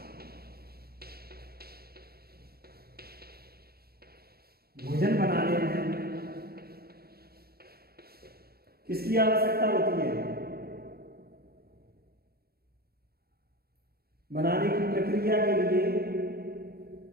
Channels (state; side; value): late; left; 0.45 ms